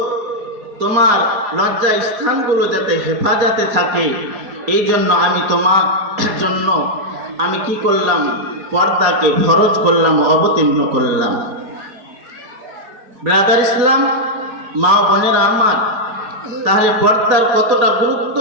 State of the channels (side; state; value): left; late; 4.2 ms